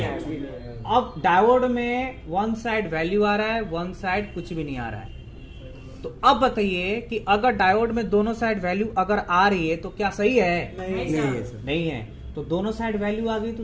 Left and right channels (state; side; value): identical; both; correlation 1.00